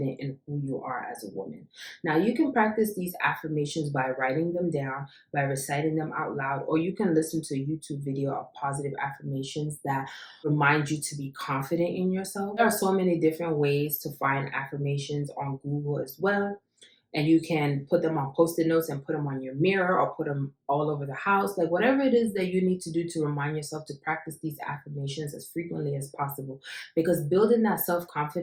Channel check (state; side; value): identical; both; correlation 1.00